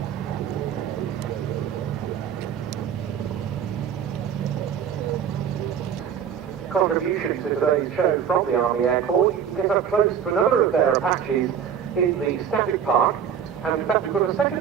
Contribution to today's show from the Army Air Corps, you can get up close to another of their Apaches in the static park, and in fact we've got a second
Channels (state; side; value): quieter; left; 8.1 dB